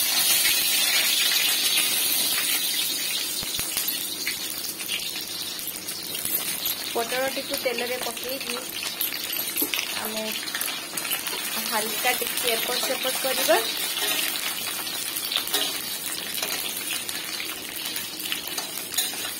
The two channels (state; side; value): identical; both; correlation 1.00